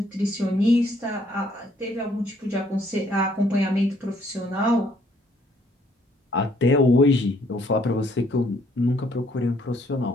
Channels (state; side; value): normal; both; correlation 0.66